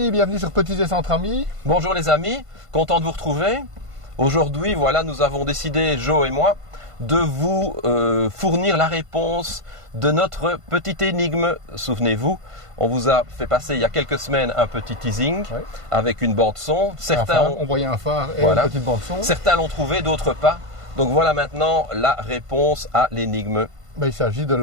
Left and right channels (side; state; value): left; late; 1.5 ms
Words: bienvenue sur Petits Essais entre amis. Bonjour les amis, content de vous retrouver. Aujourd'hui, voilà, nous avons décidé, Joe et moi, de vous fournir la réponse de notre petite énigme. Souvenez-vous, on vous a fait passer il y a quelques semaines un petit teasing avec une bande son. Certains on voyait un phare et une petite bande son. Certains l'ont trouvé, d'autres pas. Donc voilà maintenant la réponse à l'énigme. Il s'agit de